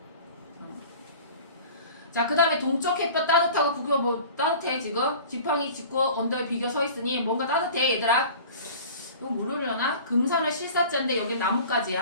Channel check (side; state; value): both; inverted; correlation -0.42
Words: 자, 그 다음에 동쪽 햇볕 따뜻하고 구겨 뭐 따뜻해 지금 지팡이 짚고 언덕에 비겨 서 있으니 뭔가 따뜻해 얘들아. 이거 모르려나? 금산은 실사자인데 여기